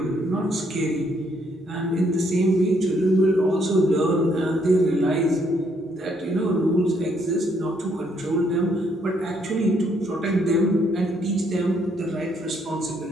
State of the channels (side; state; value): both; normal; correlation 0.70